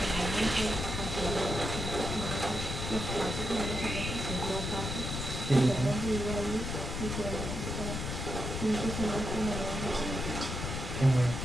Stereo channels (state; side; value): noise; left; rumble, 4 dB below the sound